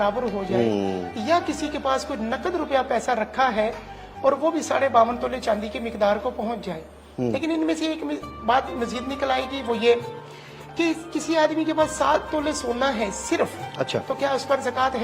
हो जाए, या किसी के पास कोई नकद रुपया पैसा रखा है और वो भी 52.5 तोले चांदी की मिकदार को पहुंच जाए। लेकिन इनमें से एक बात मजीद निकल आएगी, वो ये कि किसी आदमी के पास 7 तोले सोना है सिर्फ, अच्छा, तो क्या उस पर ज़कात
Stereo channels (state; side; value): identical; both; correlation 1.00